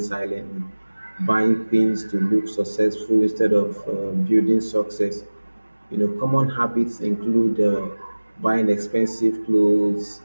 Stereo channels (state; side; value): inverted; both; correlation -1.00